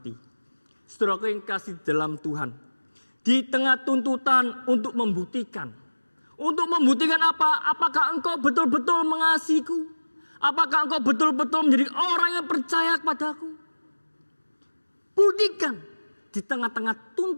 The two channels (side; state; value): both; inverted; correlation -1.00